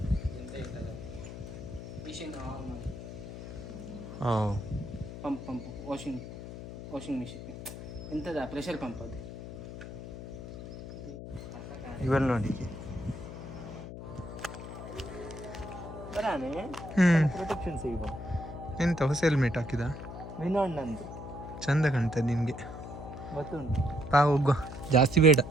ಎಂತ ಇಲ್ಲ, ಮಿಷಿನ್ ಆನ್ ಮಾಡಿ. ಓ, ಪಂಪ್ ವಾಷಿಂಗ್ ಮಿಷಿನ್ ಎಂಥದ ಪ್ರೆಷರ್ ಪಂಪ್ ಅದು. ಇವೆಲ್ಲ ನೋಡಿ ಬರಾನೆ ಪ್ರೊಟೆಕ್ಷನ್ ಸಿಗ್ಬೋದು. ಎಂತ ಹೊಸ ಹೆಲ್ಮೆಟ್ ಹಾಕಿದ? ವಿನೋಡ್ ನಂದು ಚಂದ ಕಾಣ್ತದೆ ನಿನಗೆ. ಗೊತ್ತುಂಟು. ಹೋಗುವ, ಜಾಸ್ತಿ ಬೇಡ.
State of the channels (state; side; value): noise; left; hum, 10 dB below the sound